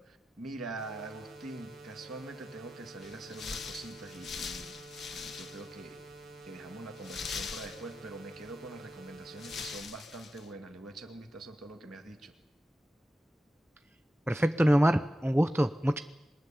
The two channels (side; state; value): both; normal; correlation 0.92